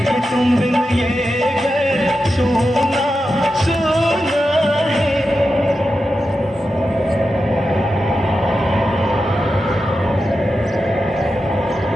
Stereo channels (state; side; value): normal; both; correlation 0.90